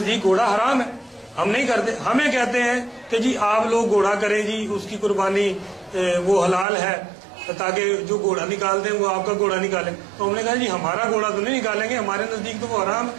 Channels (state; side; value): drops out; left; at 6.7 s